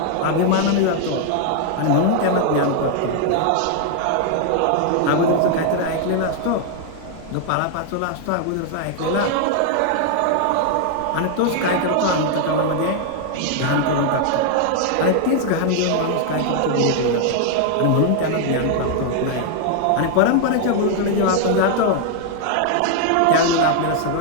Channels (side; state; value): both; different; correlation 0.00